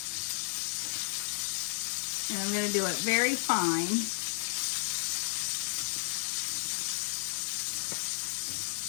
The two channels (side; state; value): right; silent; 56 dB below the other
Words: And I'm going to do it very fine.